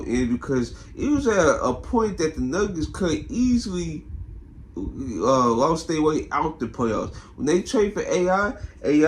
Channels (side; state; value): both; identical; correlation 1.00